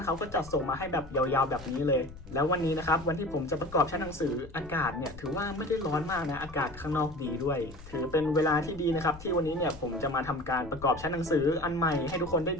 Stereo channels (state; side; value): noise; left; rumble, 17 dB below the sound